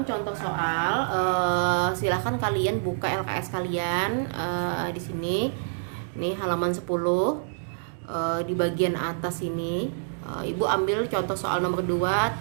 contoh soal. Silahkan kalian buka LKS kalian di sini. Ini halaman 10. Di bagian atas ini, Ibu ambil contoh soal nomor 2,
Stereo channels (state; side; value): silent; left; digital silence